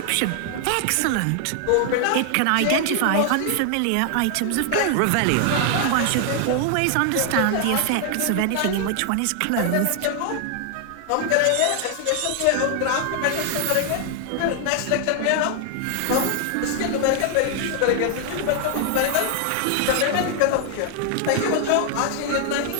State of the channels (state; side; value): different; both; correlation 0.00